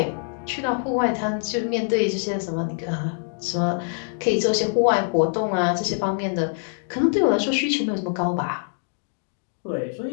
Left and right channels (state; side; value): silent; right; digital silence